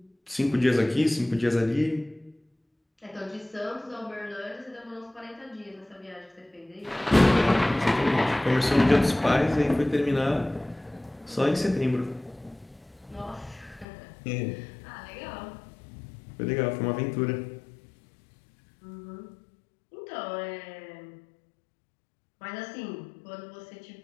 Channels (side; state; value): right; drops out; at 13.9 s